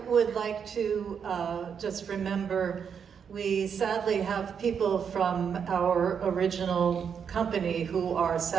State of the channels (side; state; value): left; quieter; 7.1 dB